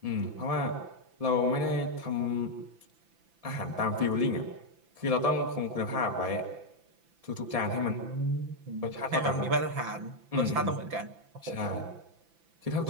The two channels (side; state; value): left; late; 5.9 ms